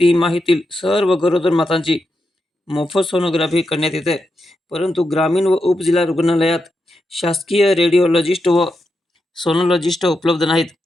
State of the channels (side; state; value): both; normal; correlation 0.86